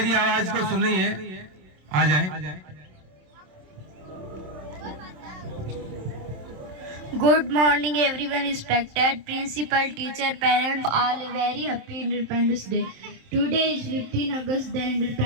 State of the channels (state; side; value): late; left; 27 ms